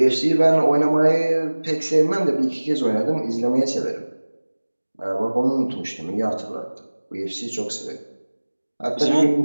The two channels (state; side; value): inverted; both; correlation -1.00